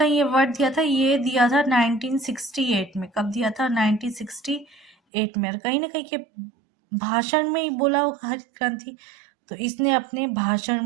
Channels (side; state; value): left; drops out; at 5.0 s